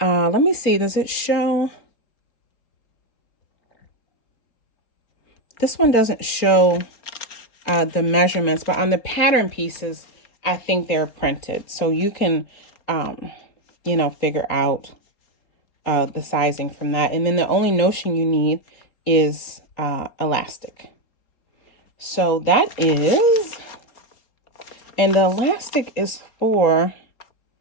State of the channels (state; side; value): late; right; 4.3 ms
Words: me see, does it show? This one doesn't show the measurements, but on the pattern pieces, I think they're printed. So you can, figure out the sizing from that. And then the only notion you need is elastic. So that is, and the elastic is for,